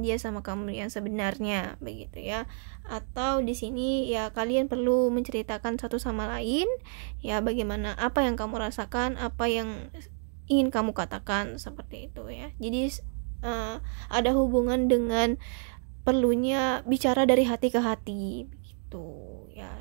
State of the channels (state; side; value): silent; left; 58 dB below the other